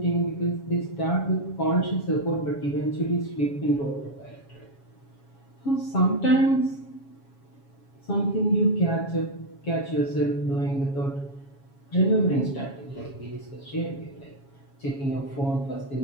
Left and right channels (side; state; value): right; late; 7.3 ms